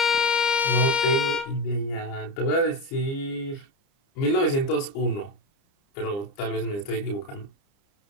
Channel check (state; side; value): late; right; 30 ms